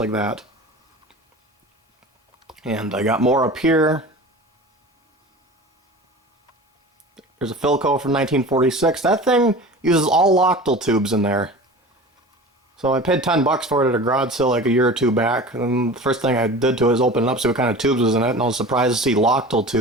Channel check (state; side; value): normal; both; correlation 0.37